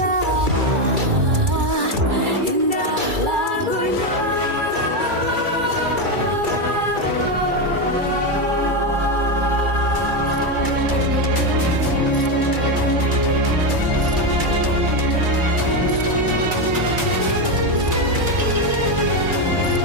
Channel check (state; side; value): late; left; 2.3 ms